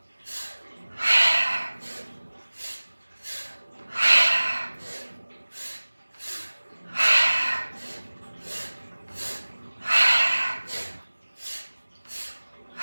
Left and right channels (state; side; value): inverted; both; correlation -1.00